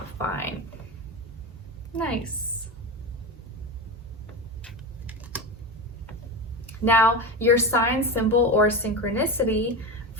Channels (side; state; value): both; normal; correlation 0.21